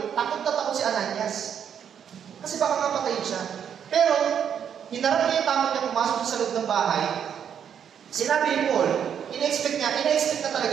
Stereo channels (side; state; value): left; quieter; 8.4 dB